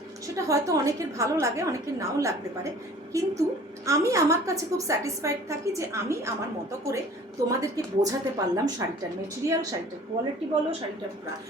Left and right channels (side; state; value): both; normal; correlation 0.48